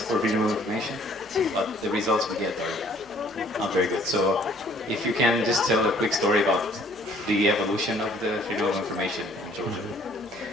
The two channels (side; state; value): both; normal; correlation 0.58